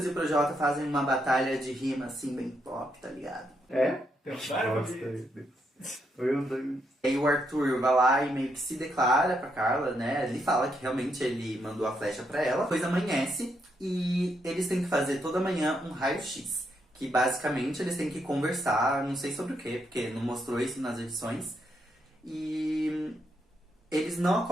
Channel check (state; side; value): normal; both; correlation 0.78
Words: e o Projota fazem uma batalha de rima, assim, bem pop, tá ligado? É? E aí o Arthur vai lá e meio que se declara pra Carla, né? Ele fala que realmente ele mandou a flecha pra ela. Depois amanhece e eles têm que fazer toda manhã um raio-x. Que basicamente eles têm que conversar, não sei sobre o quê, porque não mostrou isso nas edições. E eles não